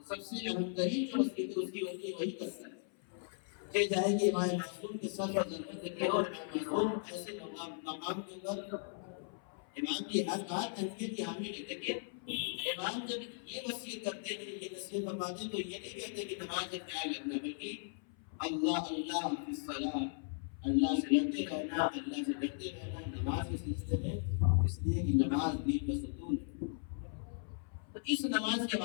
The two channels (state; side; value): silent; right; 53 dB below the other